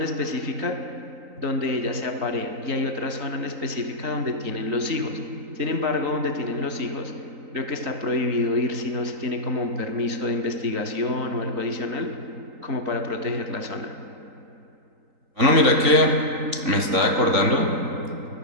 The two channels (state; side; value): late; left; 3.9 ms